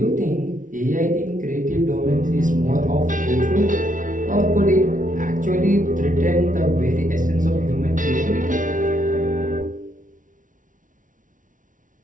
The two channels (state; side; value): late; left; 0.38 ms